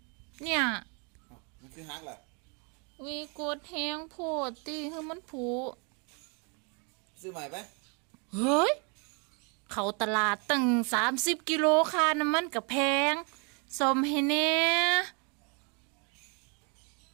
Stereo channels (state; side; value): quieter; left; 35.4 dB